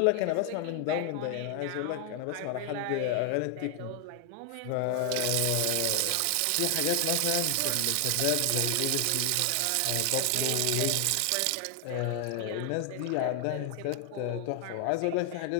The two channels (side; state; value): both; different; correlation 0.00